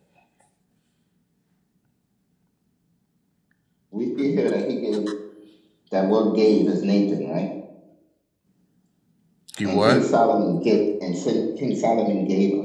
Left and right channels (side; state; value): both; identical; correlation 1.00